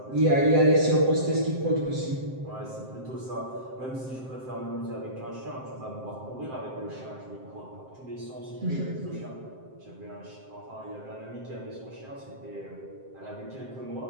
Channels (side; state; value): left; late; 7.7 ms